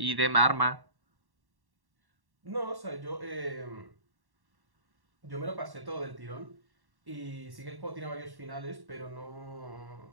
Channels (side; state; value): left; late; 1.1 ms